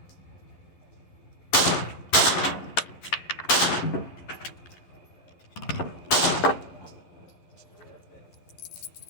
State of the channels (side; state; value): right; late; 11 ms